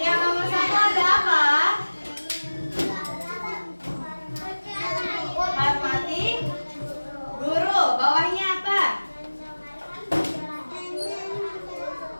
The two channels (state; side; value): inverted; both; correlation -1.00